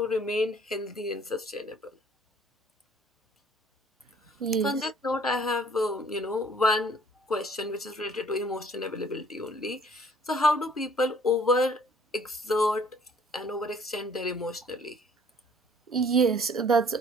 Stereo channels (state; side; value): normal; both; correlation 0.57